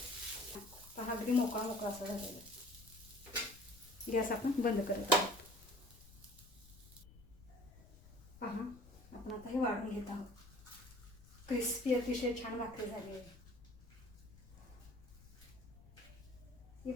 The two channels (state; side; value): noise; left; rumble, 20 dB below the sound